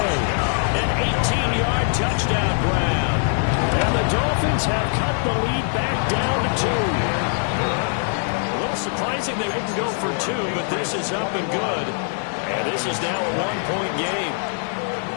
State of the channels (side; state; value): right; silent; 57 dB below the other